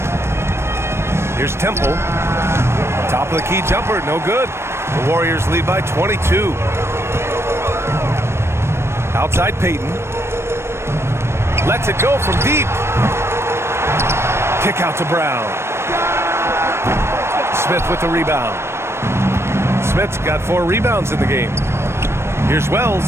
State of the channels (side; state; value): left; late; 0.12 ms